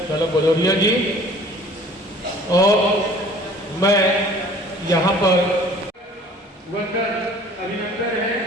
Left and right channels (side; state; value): both; normal; correlation 0.50